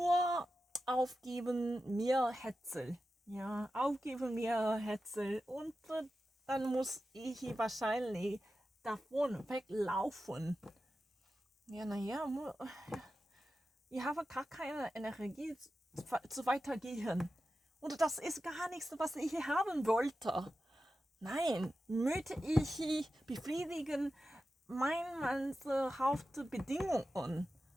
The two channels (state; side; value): normal; both; correlation 0.92